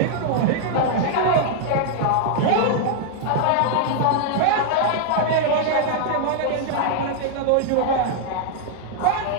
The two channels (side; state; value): both; different; correlation 0.00